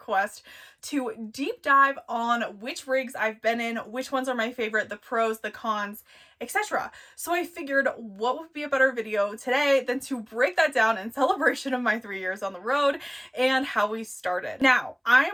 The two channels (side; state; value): both; identical; correlation 1.00